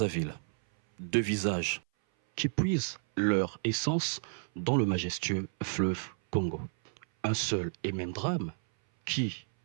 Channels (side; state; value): left; silent; 57 dB below the other